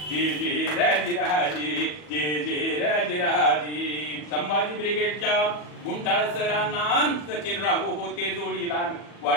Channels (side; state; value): right; late; 40 ms